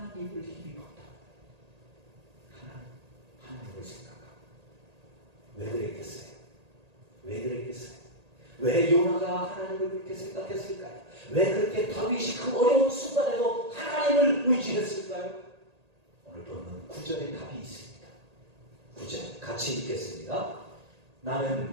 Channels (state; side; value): late; left; 1.8 ms